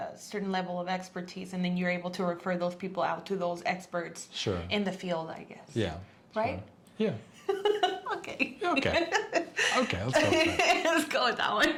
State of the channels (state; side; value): identical; both; correlation 1.00